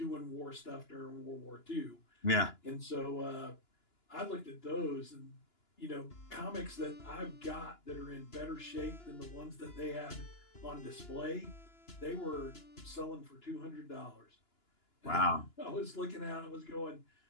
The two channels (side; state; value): right; late; 2.9 ms